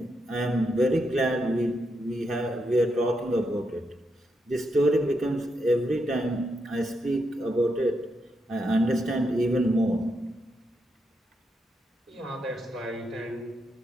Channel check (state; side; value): normal; both; correlation 0.82